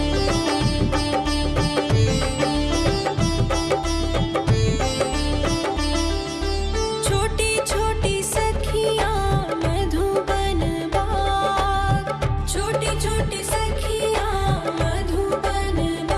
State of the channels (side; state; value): both; identical; correlation 1.00